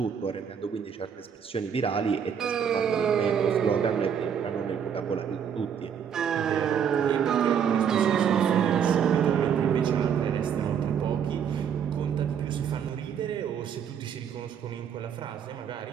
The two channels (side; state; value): left; quieter; 7.8 dB